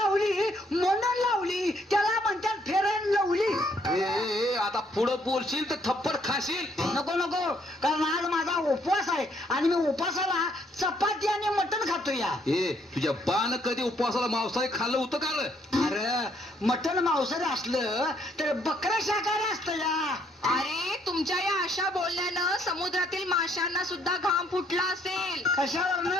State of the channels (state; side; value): normal; both; correlation 0.68